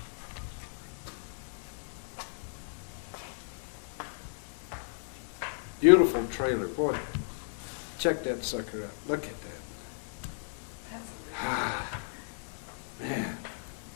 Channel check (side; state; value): right; silent; 55 dB below the other